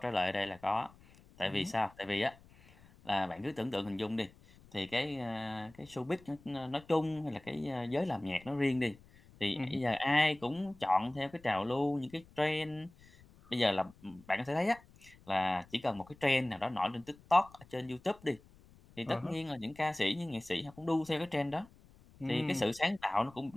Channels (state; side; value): noise; left; rumble, 25 dB below the sound